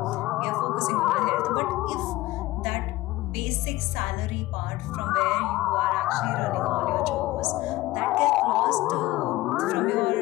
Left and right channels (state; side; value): quieter; right; 18.1 dB